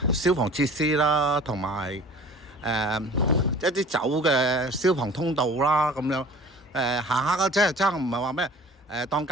消防設施啦，同埋一啲走嘅消防通道啦，咁樣行下嘅啫，真係唔係話咩當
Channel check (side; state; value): both; normal; correlation 0.46